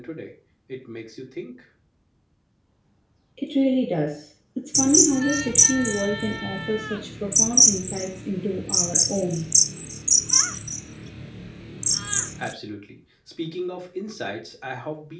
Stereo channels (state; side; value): identical; both; correlation 1.00